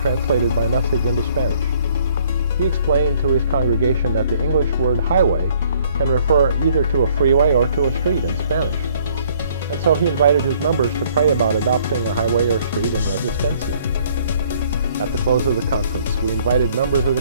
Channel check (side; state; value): both; inverted; correlation -0.61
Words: translated my message into Spanish. He explained to his congregation that the English word highway can refer either to a freeway or to a street in Spanish. And so he invited his members to pray about adopting a highway or street in Resistencia. At the close of the conference, we invited members of